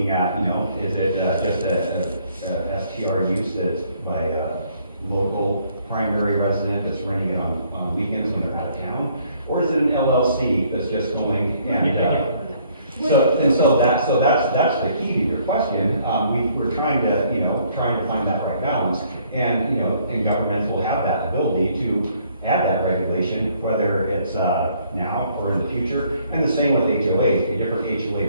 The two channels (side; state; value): both; inverted; correlation -0.64